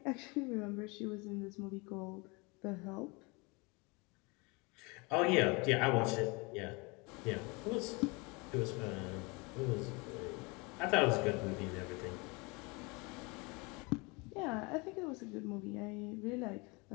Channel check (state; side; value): quieter; right; 28.0 dB